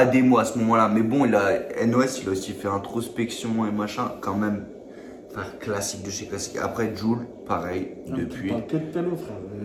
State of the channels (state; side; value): identical; both; correlation 1.00